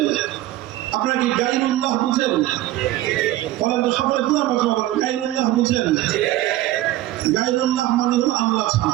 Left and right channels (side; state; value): left; quieter; 15.2 dB